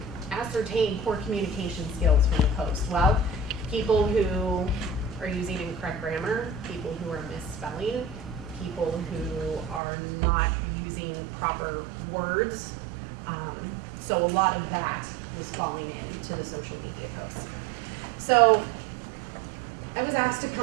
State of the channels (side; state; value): left; drops out; at 9.8 s